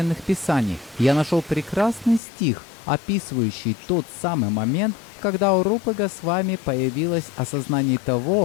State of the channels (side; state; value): right; drops out; at 2.2 s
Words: писаний. Я нашел прекрасный стих, описывающий тот самый момент, когда у Рупы Госвами появилось осознание